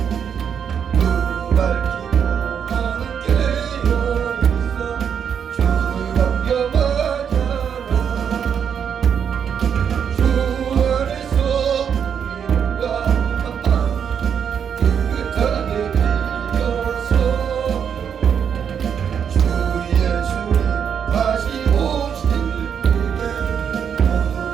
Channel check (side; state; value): left; quieter; 7.7 dB